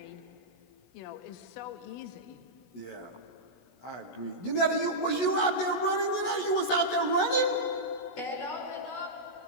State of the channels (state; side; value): late; right; 16 ms